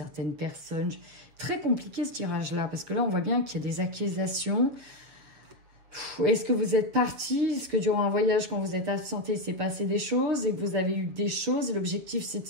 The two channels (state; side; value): late; left; 7.2 ms